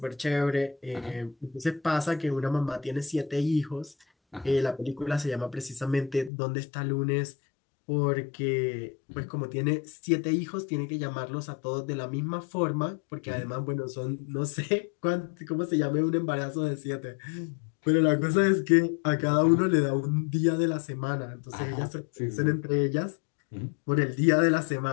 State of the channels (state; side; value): drops out; right; at 6.3 s